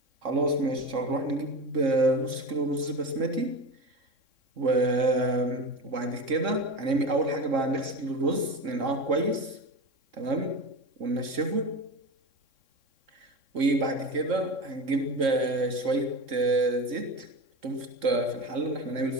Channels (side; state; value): left; late; 3.6 ms